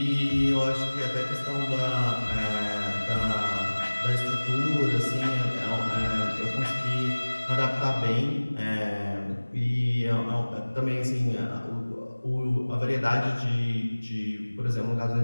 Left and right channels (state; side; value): inverted; both; correlation -1.00